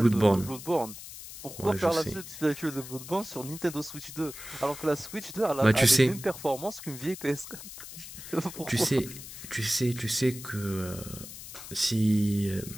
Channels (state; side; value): noise; left; hiss, 12 dB below the sound